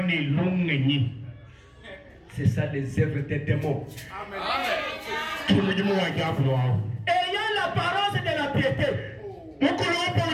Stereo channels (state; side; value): identical; both; correlation 1.00